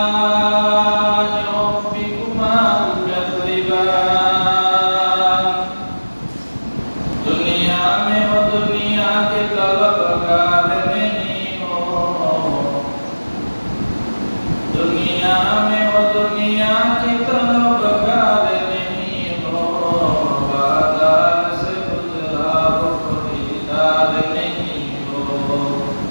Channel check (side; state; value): both; inverted; correlation -1.00